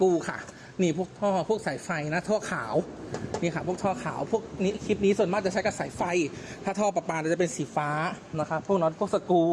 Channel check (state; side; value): identical; both; correlation 1.00